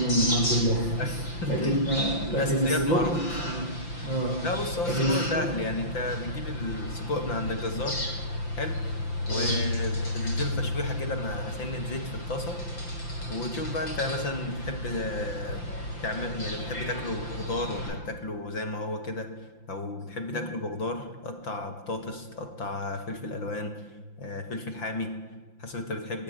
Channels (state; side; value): late; right; 5.9 ms